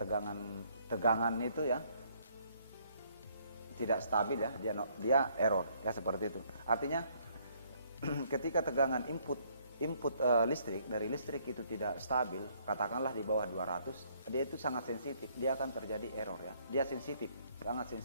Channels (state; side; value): inverted; both; correlation -0.66